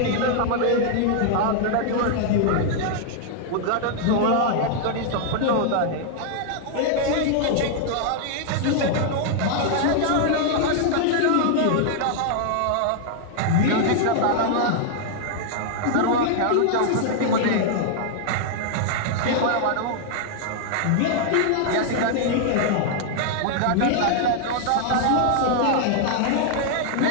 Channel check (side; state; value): both; different; correlation -0.01